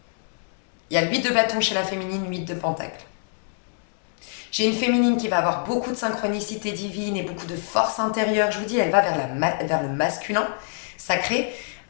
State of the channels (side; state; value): right; silent; digital silence